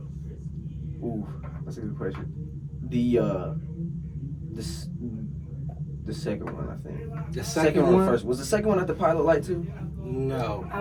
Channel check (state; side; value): identical; both; correlation 1.00